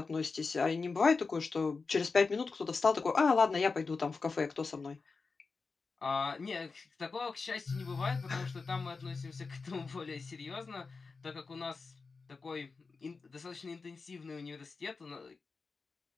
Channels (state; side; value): quieter; right; 4.4 dB